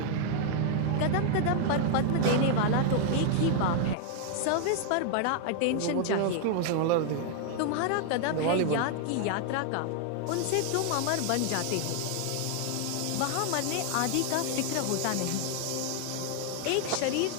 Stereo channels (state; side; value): different; both; correlation 0.00